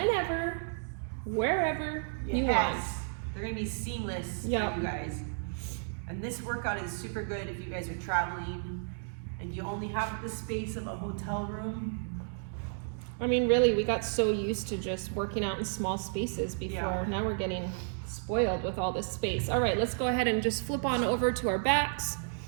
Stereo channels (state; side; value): silent; left; digital silence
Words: wherever you want. They're gonna be seamless Yep. for you guys. And this workout is super good if you guys are traveling and you only have the space of a hotel room. I mean, really, we got so used to just working out in small spaces before. Yeah. Now we're getting spoiled with all this space. All right, let's go ahead and just flip on over to our backs.